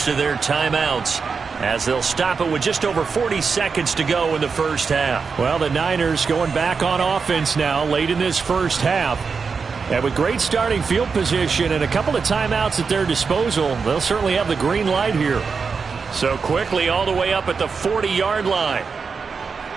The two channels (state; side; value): quieter; left; 5.3 dB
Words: of their timeouts as they'll stop it with just over 40 seconds to go in the first half. Well, the Niners going back on offense now late in this first half. And with great starting field position and a couple of timeouts at their disposal, they'll certainly have the green light here. So quickly all the way up at the 40-yard line.